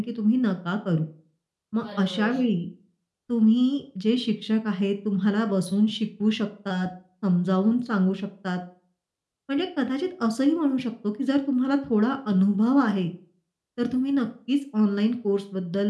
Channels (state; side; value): identical; both; correlation 1.00